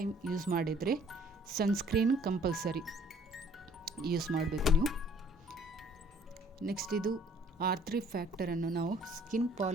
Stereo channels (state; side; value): normal; both; correlation 0.58